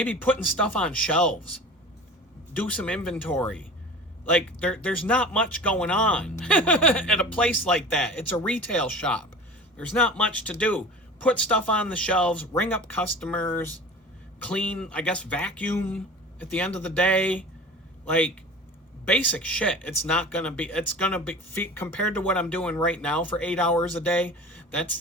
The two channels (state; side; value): normal; both; correlation 0.37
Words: putting stuff on shelves, do some inventory. Like, there's not much going on at a place like that. It's a retail shop. There's not much to do. Put stuff on the shelves, ring up customers, clean, I guess, vacuum at the end of the day. Like, basic shit. It's going to be, compared to what I'm doing right now for 8 hours a day,